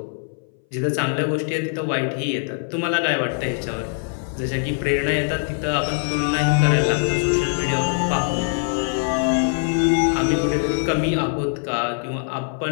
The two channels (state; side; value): silent; right; 61 dB below the other